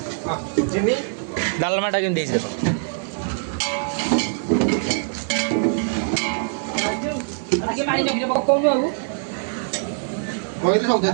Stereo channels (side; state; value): left; silent; digital silence